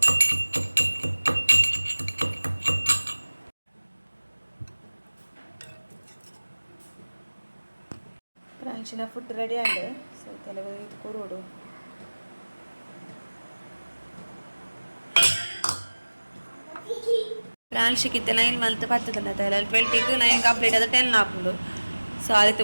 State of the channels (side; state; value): both; inverted; correlation -1.00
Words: ಪ್ರಾನ್ಶಿನ ಫುಡ್ ರೆಡಿ ಆಗಿದೆ ಸೊ ತೆಲುಗು ಇದು ಕೊರೋಡು ಪ್ರಾನ್ಶಿಗೆ 9 ಮಂತ್ ಪತ್ತದಲ್ಲ ತಲೆ 20ಗೆ 9 ಕಂಪ್ಲೀಟ್ ಆದ 10 ಆಪುಂಡು ಸೊ ಅದಕ್ಕೆ